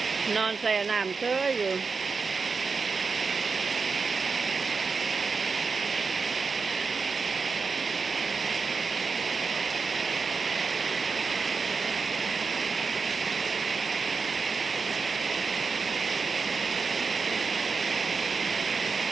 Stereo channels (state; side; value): quieter; left; 4.8 dB